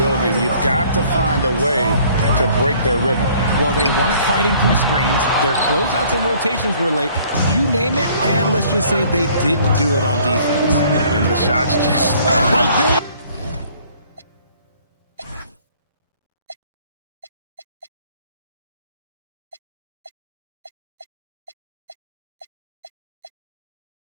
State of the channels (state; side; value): inverted; both; correlation -0.57